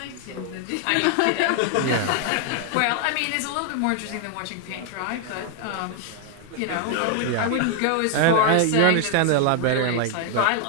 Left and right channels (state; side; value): different; both; correlation 0.00